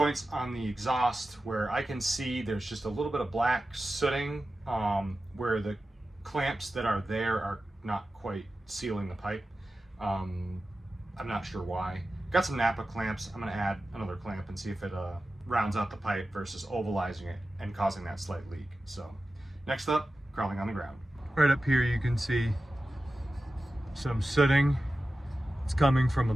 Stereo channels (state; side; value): normal; both; correlation 0.94